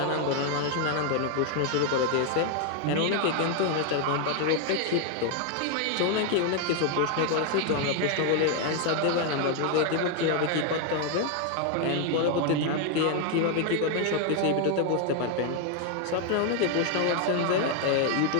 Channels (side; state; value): both; different; correlation 0.01